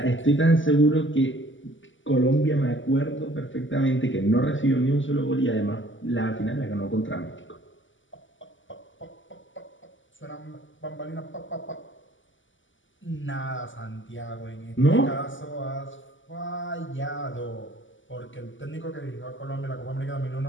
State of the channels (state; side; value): late; right; 0.55 ms